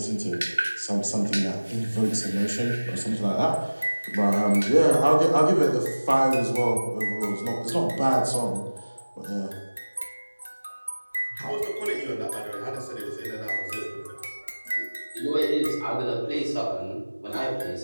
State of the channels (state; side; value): inverted; both; correlation -1.00